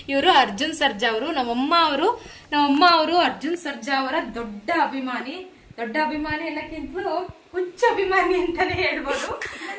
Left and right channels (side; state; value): both; identical; correlation 1.00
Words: ಇವರು ಅರ್ಜುನ್ ಸರ್ಜಾ ಅವರು. ನಮ್ಮಮ್ಮ ಅವರು ಅರ್ಜುನ್ ಸರ್ಜಾ ಅವರ ದೊಡ್ಡ ಅಭಿಮಾನಿ ಎಲ್ಲಕ್ಕಿಂತಲೂ ಹುಚ್ಚ ಅಭಿಮಾನಿ ಅಂತಾನೆ ಹೇಳ್ಬೋದು.